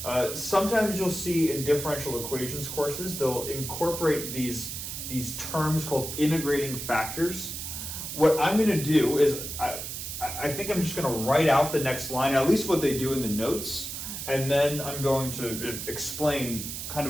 Sometimes you'll see in differential equations courses they'll incorporate these terms called integrating factors. What I'm going to do is I think I'm just going to write out the next line, at least what they do in the notes, and then I'm going to explain kind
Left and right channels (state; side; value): noise; right; hiss, 6 dB below the sound